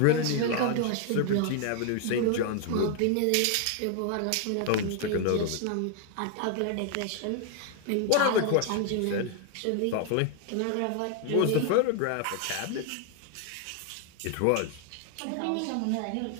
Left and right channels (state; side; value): different; both; correlation 0.00